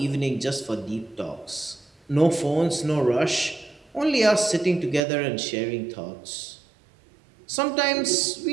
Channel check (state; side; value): drops out; left; at 5.0 s